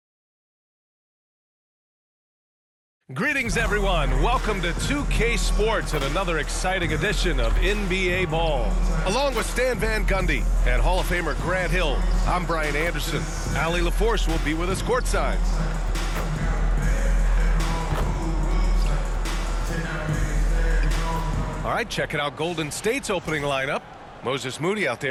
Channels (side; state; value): both; identical; correlation 1.00